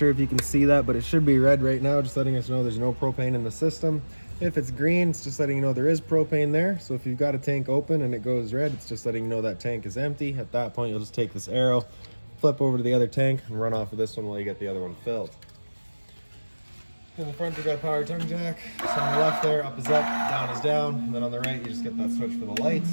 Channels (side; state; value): both; inverted; correlation -1.00